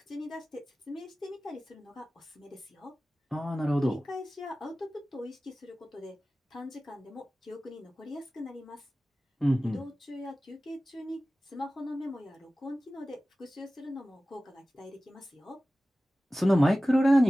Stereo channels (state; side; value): normal; both; correlation 0.96